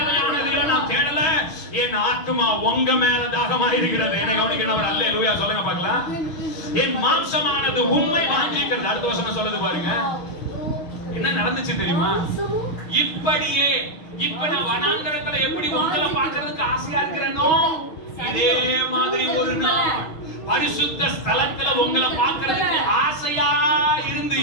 நான் தேடல. என் ஆத்மா உங்க மேல தாகமா இருக்கிறது. என்னை கவனிக்கணும். அல்லேலூயா சொல்லுங்க பார்க்கலாம். என் மாம்சமானது உம்மை வாஞ்சிக்கிறது. அடுத்த வசனம் சொல்லுது பாருங்க. என்ன நடந்துச்சு தெரியுமா? இப்படியே இப்ப நான் வனாந்தரத்துல எப்படி உங்களை பார்க்கிறதுக்கு ஆசையா இருக்கிறேனோ இதே மாதிரி ஒரு நாள் பரிசுத்த ஸ்தலத்துல உங்களை பார்க்கிறதுக்கு ஆசையா இருந்து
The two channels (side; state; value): right; late; 6.4 ms